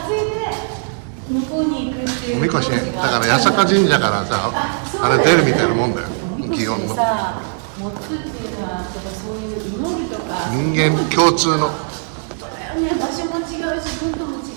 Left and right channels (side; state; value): left; silent; 61 dB below the other